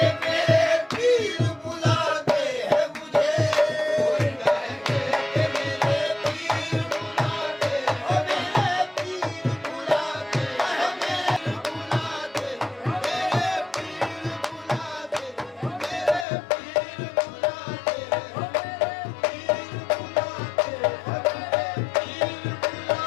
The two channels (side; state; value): right; drops out; at 16.2 s